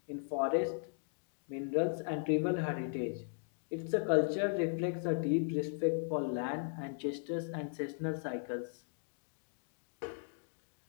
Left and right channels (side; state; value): right; silent; digital silence